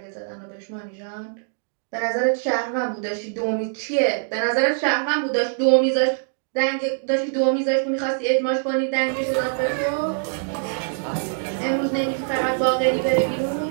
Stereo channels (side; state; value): left; silent; digital silence